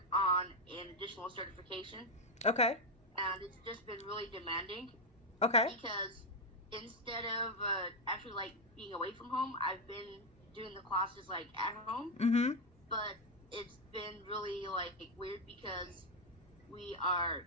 on an additional certification, Okay. and it's just been really demanding Okay. because instead of actually like being away from home, I've been doing the classes like at home, Mhm. but it's been really like weird because we are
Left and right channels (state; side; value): normal; both; correlation 0.04